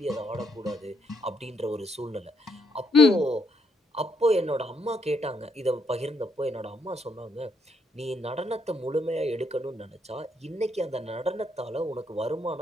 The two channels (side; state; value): both; normal; correlation 0.75